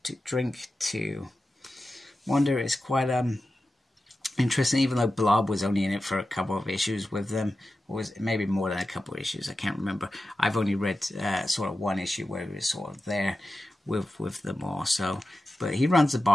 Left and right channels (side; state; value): both; normal; correlation 0.93